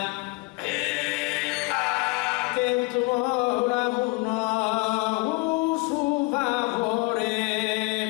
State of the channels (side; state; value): right; quieter; 26.3 dB